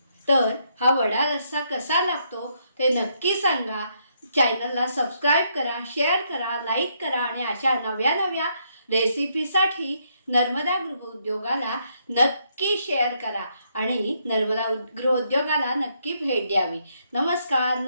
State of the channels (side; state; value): both; inverted; correlation -0.74